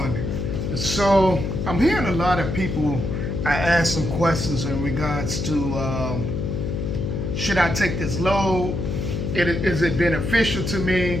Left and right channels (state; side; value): noise; left; hum, 2 dB below the sound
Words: So I'm hearing a lot of people. I asked some questions in regards to should I take this load? Is it beneficial to me?